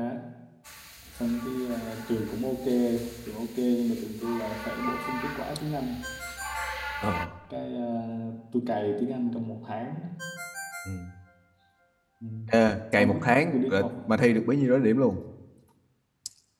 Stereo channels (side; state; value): both; identical; correlation 1.00